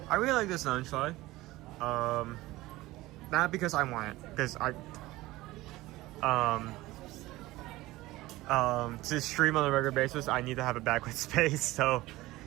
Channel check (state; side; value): quieter; left; 18.4 dB